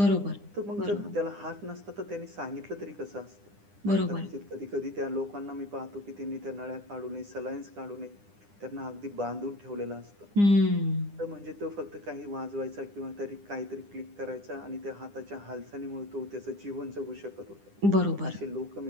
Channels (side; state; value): left; late; 9.9 ms